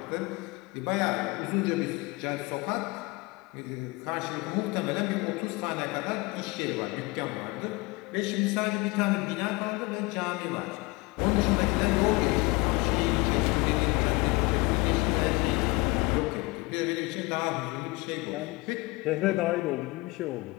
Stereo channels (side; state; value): right; quieter; 24.2 dB